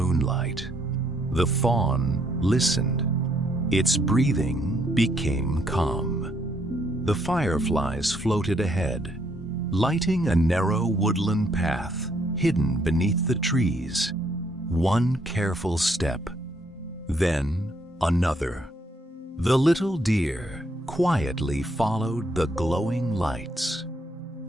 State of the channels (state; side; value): normal; both; correlation 0.71